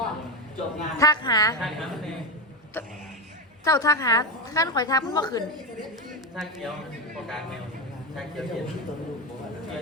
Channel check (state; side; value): normal; both; correlation 0.12